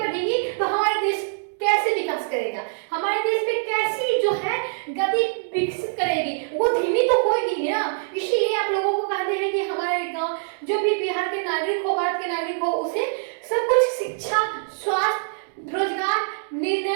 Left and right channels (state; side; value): silent; left; digital silence